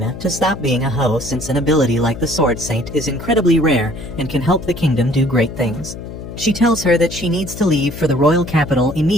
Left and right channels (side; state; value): left; noise; hum, 11 dB below the sound